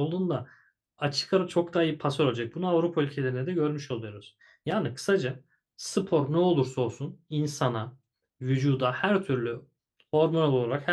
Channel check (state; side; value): identical; both; correlation 1.00